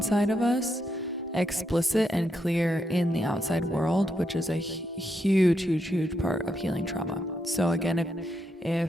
of us explicit and clear in the outside world, which is a huge part of healing trauma. So again,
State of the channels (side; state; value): both; normal; correlation 0.81